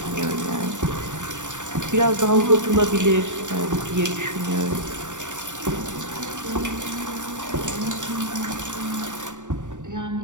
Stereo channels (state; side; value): late; left; 0.86 ms